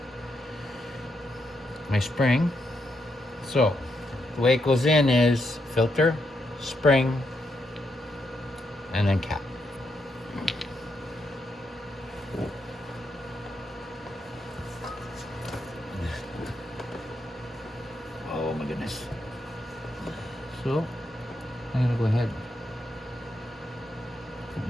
my spring. So the way it goes in is filter, spring, and then cap. Oh my goodness. So I'm gonna go ahead and put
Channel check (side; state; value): both; normal; correlation 0.81